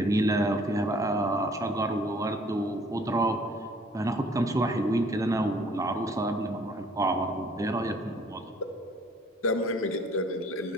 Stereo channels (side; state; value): both; normal; correlation 0.58